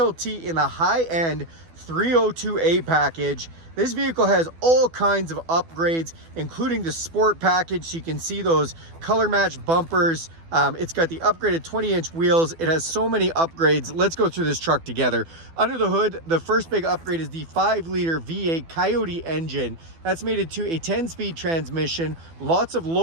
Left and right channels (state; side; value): late; left; 12 ms